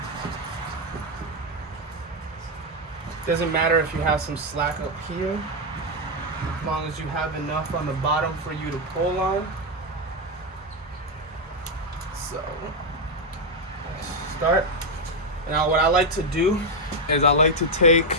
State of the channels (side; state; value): both; normal; correlation 0.03